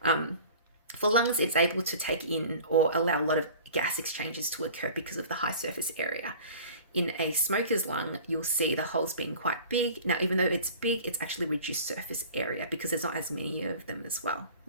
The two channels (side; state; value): both; inverted; correlation -0.42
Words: lungs, it's able to take in or allow a lot of gas exchanges to occur because of the high surface area. In a smoker's lung, you'll see the holes being quite big. Now, even though it's big, it's actually reduced surface area because there's not as many of them as well.